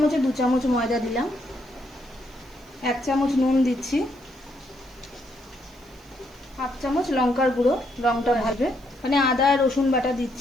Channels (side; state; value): right; noise; hiss, 30 dB below the sound